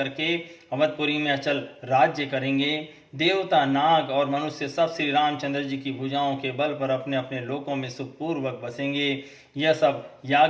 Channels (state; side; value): identical; both; correlation 1.00